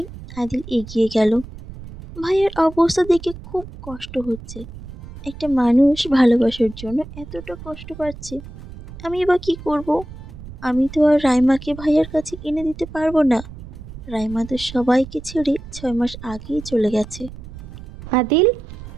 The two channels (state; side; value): noise; right; rumble, 14 dB below the sound